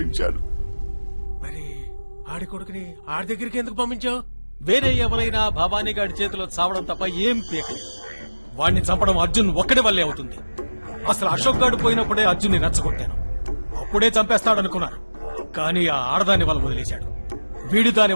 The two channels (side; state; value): both; inverted; correlation -1.00